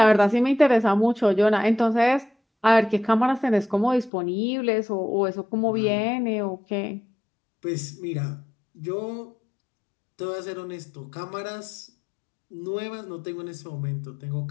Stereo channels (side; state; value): right; drops out; at 4.1 s